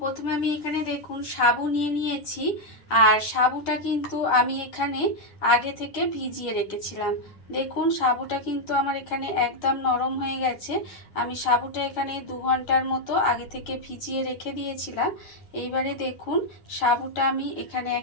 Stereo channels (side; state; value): right; late; 9.8 ms